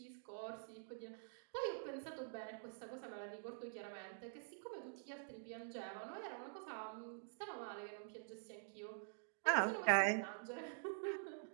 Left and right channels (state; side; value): silent; left; digital silence